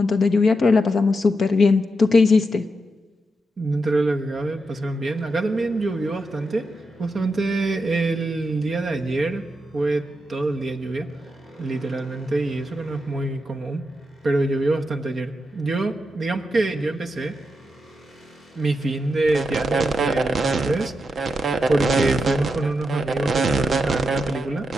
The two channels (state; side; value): normal; both; correlation 0.85